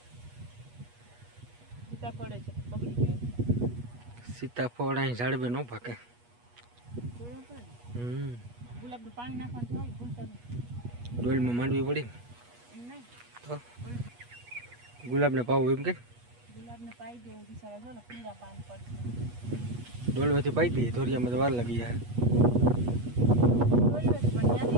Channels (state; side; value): late; left; 8.3 ms